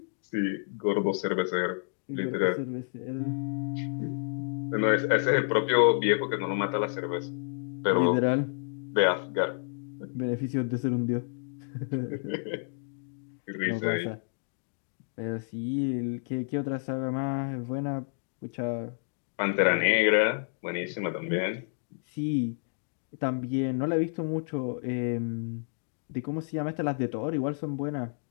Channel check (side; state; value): right; silent; digital silence